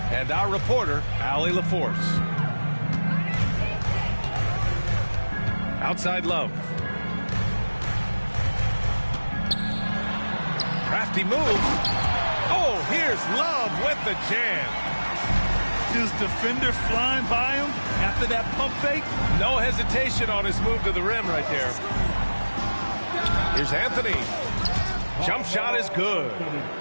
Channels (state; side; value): inverted; both; correlation -1.00